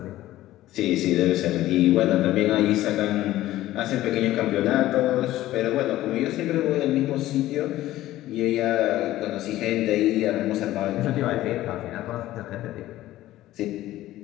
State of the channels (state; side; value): quieter; right; 15.1 dB